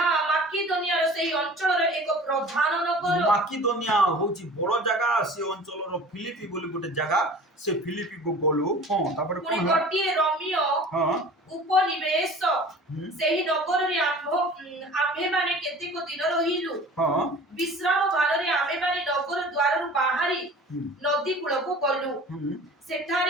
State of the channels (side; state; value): both; normal; correlation 0.42